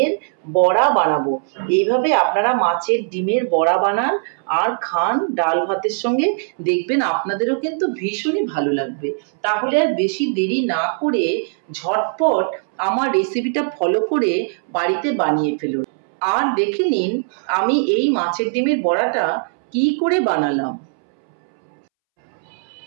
বড়া বানাবো। এইভাবে আপনারা মাছের ডিমের বড়া বানান আর খান ডাল ভাতের সঙ্গে, দেখবেন আপনাদেরও কিন্তু ভীষণই ভালো লাগবে। তাহলে আর বেশি দেরি না করে ঝটপট আমার রেসিপিটা ফলো করে বাড়িতে বানিয়ে ফেলুন। আর দেখে নিন আমি এই মাছের ডিমের বড়াটা কি করে বানালাম।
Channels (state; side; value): silent; left; 66 dB below the other